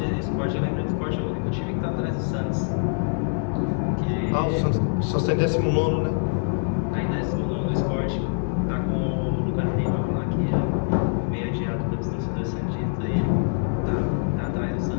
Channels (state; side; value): silent; right; digital silence